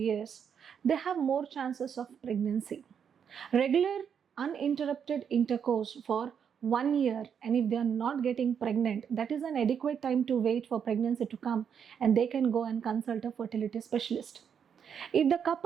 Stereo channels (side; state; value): left; quieter; 7.6 dB